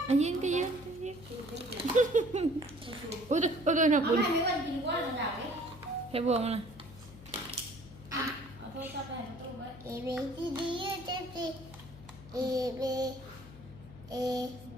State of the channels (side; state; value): left; noise; hum, 18 dB below the sound